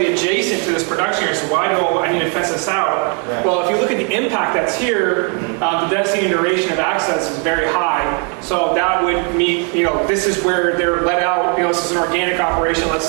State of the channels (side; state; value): left; quieter; 38.3 dB